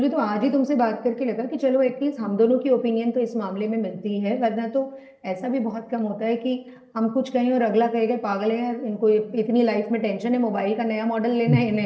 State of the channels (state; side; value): identical; both; correlation 1.00